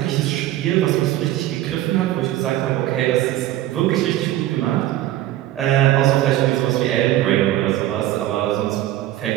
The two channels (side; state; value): left; quieter; 14.2 dB